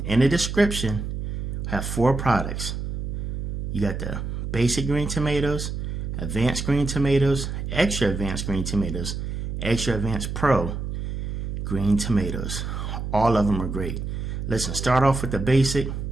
In the description, I have 4 products. You got the basic green tomatoes, advanced green tomatoes, extra advanced green tomatoes, extra advanced pro green tomatoes. All of them are great. Listen, start off with the basic.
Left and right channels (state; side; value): noise; right; hum, 4 dB below the sound